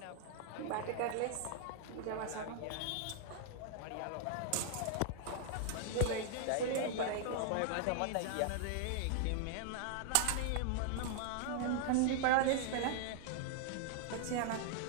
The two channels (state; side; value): different; both; correlation 0.00